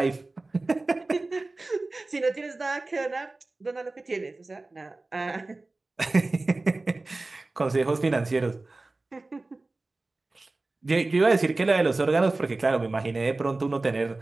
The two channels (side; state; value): left; quieter; 3.2 dB